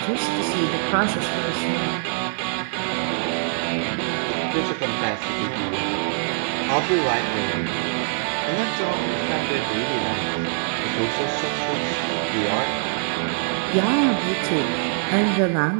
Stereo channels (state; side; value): silent; left; 63 dB below the other